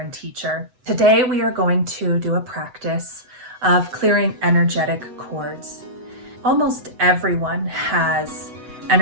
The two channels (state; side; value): late; left; 7.9 ms